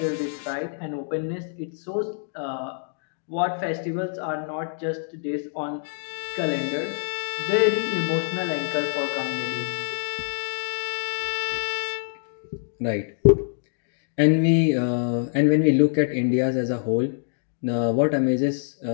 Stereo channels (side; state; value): right; silent; digital silence